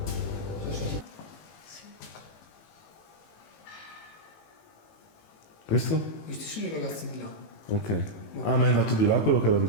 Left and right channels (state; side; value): late; right; 18 ms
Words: Questo? Questi sono i ragazzi di là. Ok. Ah, ma è andato di là quello che era di